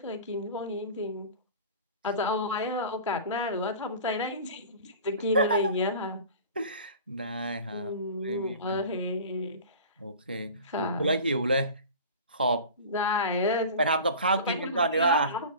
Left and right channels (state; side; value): inverted; both; correlation -0.38